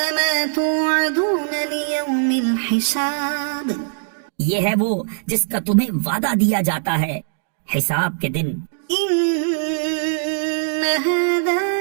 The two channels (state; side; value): silent; left; digital silence